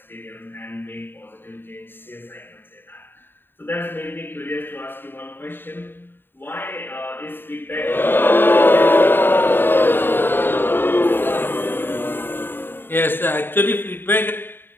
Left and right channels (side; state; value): right; late; 0.098 ms